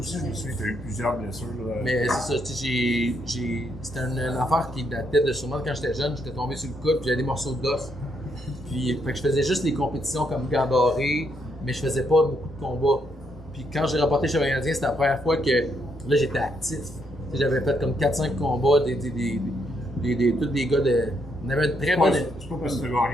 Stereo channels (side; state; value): both; normal; correlation 0.76